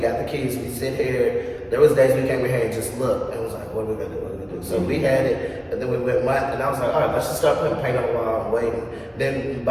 the keys, we sit here, there was days we came in here and just looked, and was like, what are we gonna do, what are we gonna do? So we had it, and then we went month, and I was like, all right, let's just start putting paint on the wall and waiting. Then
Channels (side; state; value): both; identical; correlation 1.00